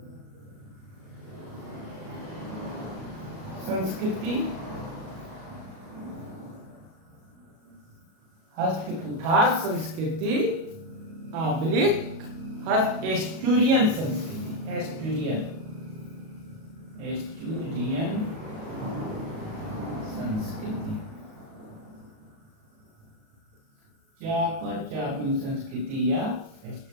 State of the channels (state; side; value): late; left; 37 ms